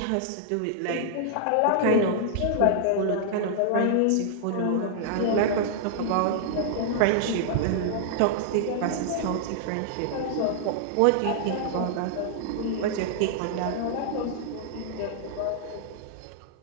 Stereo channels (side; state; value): both; different; correlation -0.01